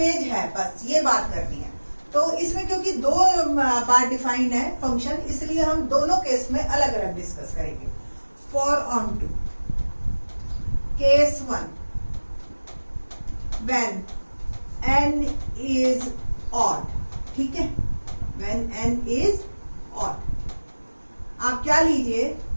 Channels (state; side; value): inverted; both; correlation -1.00